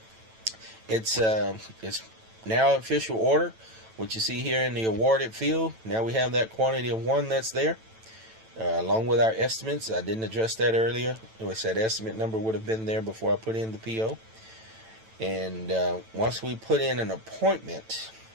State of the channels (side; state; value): left; late; 9.0 ms